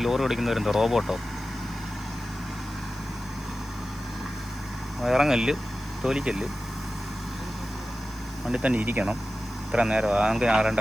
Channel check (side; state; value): left; noise; hiss, 26 dB below the sound